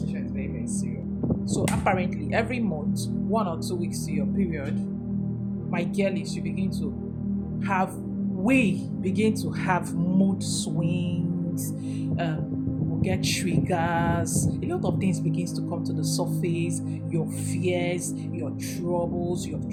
is very, very serious. So apparently, every month, 1 or 2 weeks to your period, my girlies, we begin to have mood swings. We'll get triggers. A lot of things begins to come to the surface. Your fears, your troubles, your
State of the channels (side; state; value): both; identical; correlation 1.00